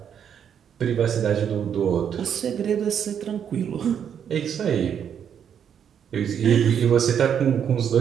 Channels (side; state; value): left; quieter; 8.3 dB